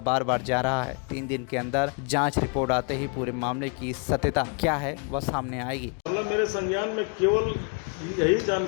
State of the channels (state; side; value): quieter; right; 37.7 dB